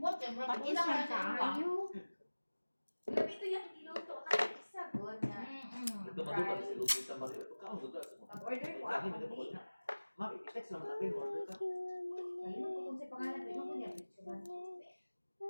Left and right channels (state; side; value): inverted; both; correlation -1.00